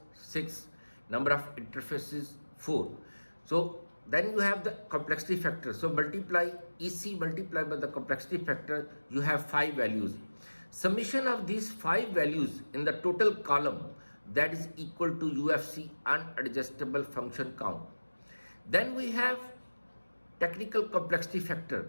6, number of interfaces 4. So then you have the complexity factor. So multiply EC multiplied by the complexity factor, you have 5 values. Summation of these 5 values in the total column, that is equal to UFC, unadjustable function count. Then we have technical complexity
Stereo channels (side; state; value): both; inverted; correlation -1.00